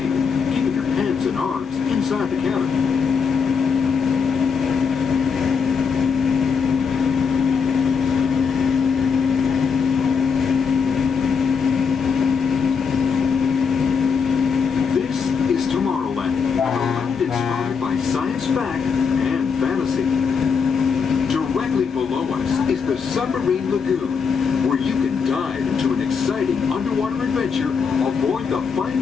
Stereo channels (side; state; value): right; quieter; 5.9 dB